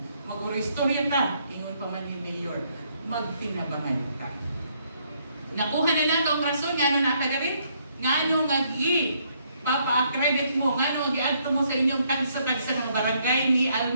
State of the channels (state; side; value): inverted; both; correlation -0.70